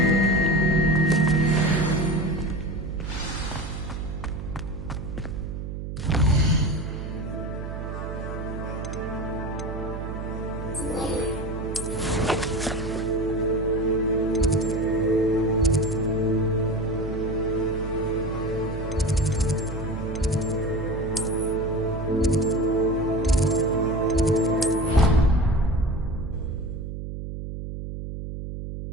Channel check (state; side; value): noise; right; hum, 7 dB below the sound